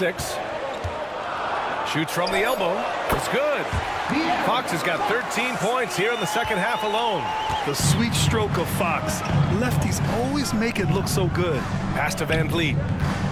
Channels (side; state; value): both; identical; correlation 1.00